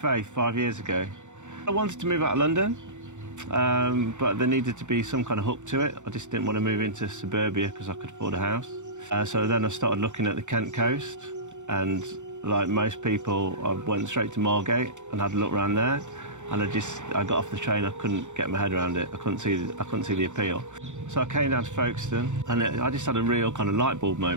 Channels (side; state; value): left; late; 0.85 ms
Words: 5 years ago. I wanted to move out of London, but there needed to be some kind of hook to it. I just didn't want to move into suburbia because I could afford a house. So then I started looking at the Kent coast, and like most people, I went straight to Margate and had a look around there. And I got off the train, I couldn't get my head around it. I couldn't see the appeal. So I came down to Folkestone, and I just had a real kind of light bulb